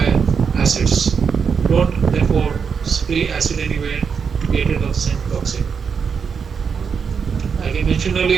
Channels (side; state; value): left; quieter; 6.2 dB